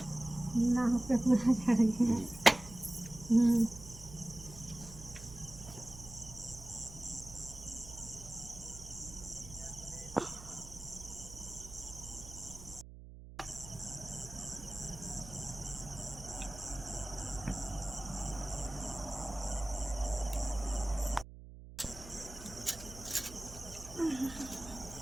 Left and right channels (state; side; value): noise; right; hum, 15 dB below the sound